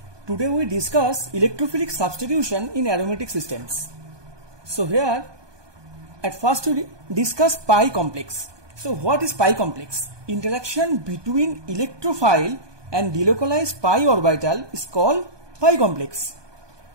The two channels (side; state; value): left; late; 1.2 ms